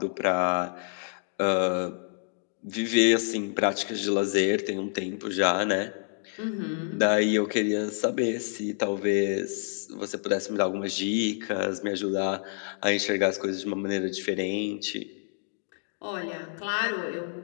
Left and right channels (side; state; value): right; silent; digital silence